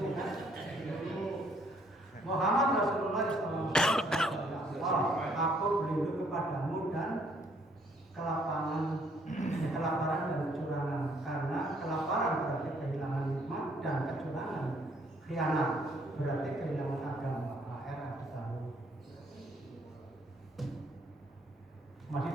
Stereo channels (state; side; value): normal; both; correlation 0.66